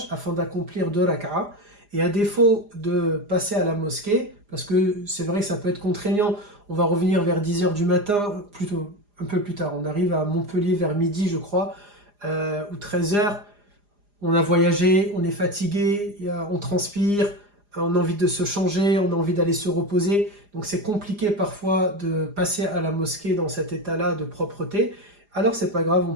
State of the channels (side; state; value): left; late; 4.9 ms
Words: afin d'accomplir 2 rak'a. Et à défaut de passer à la mosquée, parce que c'est vrai que ça peut être contraignant, on va revenir vers 10h du matin, plutôt un peu plus tard. On arrive à Montpellier vers midi, je crois, ou 13h. On a voyagé, on est fatigué, on transpire, on a envie de se changer, on a envie d'aller se reposer. Donc c'est compliqué parfois de passer à la mosquée dans cet état-là de propreté. Alors c'est pas grave, on